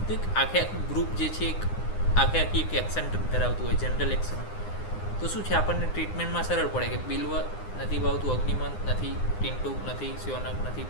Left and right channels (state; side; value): late; right; 9.8 ms